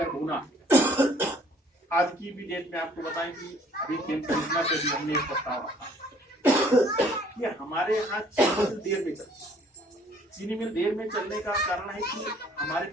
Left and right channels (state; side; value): normal; both; correlation 0.59